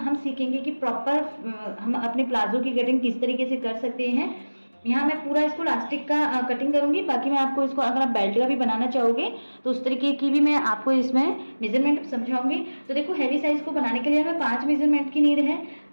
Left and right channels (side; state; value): both; inverted; correlation -1.00